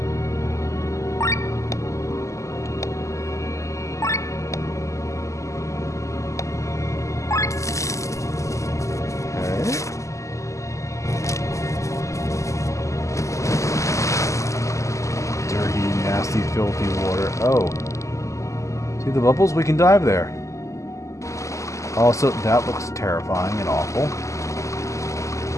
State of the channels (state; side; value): late; right; 0.15 ms